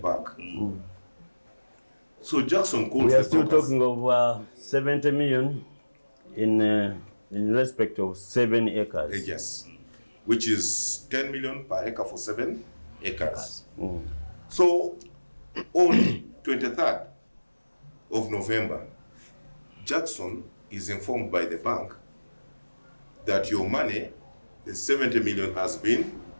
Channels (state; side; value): inverted; both; correlation -1.00